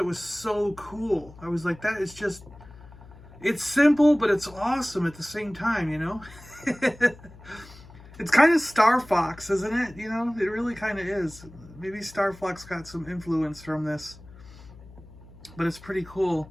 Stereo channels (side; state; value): left; noise; hum, 20 dB below the sound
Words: was so cool. I was like, that is just, it's simple, but it's awesome at the same time, you know? It's kind of Star Fox, isn't it? You know, it really kind of is. Maybe Star Fox got some influence from this, but it's pretty cool.